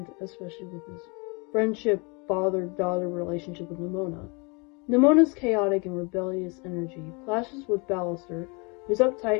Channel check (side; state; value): right; quieter; 30.7 dB